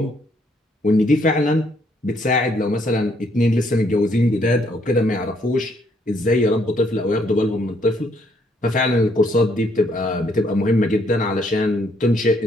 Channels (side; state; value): both; normal; correlation 0.70